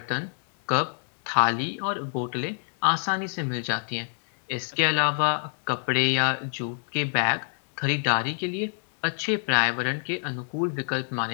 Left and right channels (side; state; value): right; silent; digital silence